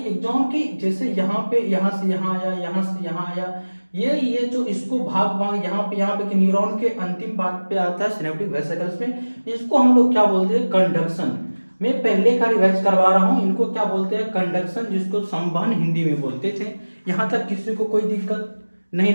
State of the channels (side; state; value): both; inverted; correlation -1.00